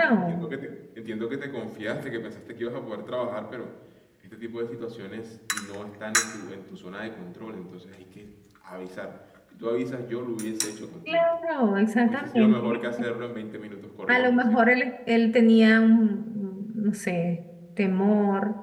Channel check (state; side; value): identical; both; correlation 1.00